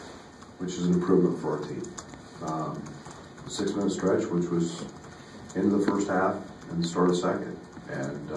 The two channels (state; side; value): identical; both; correlation 1.00